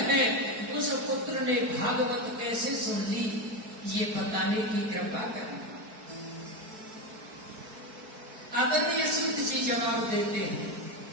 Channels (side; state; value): left; late; 4.6 ms